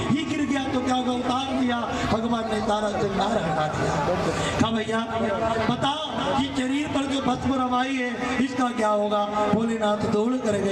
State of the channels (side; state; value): both; identical; correlation 1.00